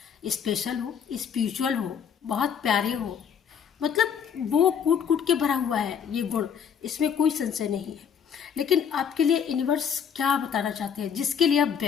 स्पेशल हो, स्पिरिचुअल हो, बहुत प्यारे हो, मतलब वो कूट कूट के भरा हुआ है ये गुण, इसमें कोई संशय नहीं है। लेकिन आपके लिए यूनिवर्स क्या बताना चाहते हैं, जिसके लिए आप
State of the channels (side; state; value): right; quieter; 7.5 dB